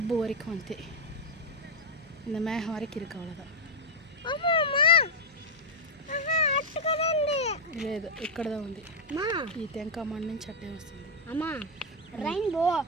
వరకు అంతే இந்த மேகம் வரைக்கும் இருக்கு அவ்வளோதான் లేదు ఇక్కడదా ఉంది ఈ తెంకమ్మ నుంచి అట్టే వస్తుంది అమ్మా ரெயின்போ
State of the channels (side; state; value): both; normal; correlation -0.01